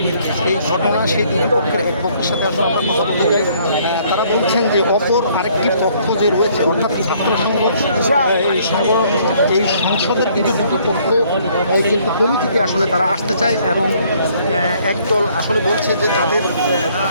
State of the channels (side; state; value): both; inverted; correlation -0.63